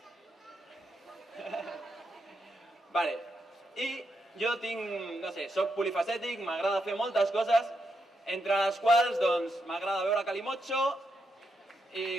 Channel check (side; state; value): both; normal; correlation 0.82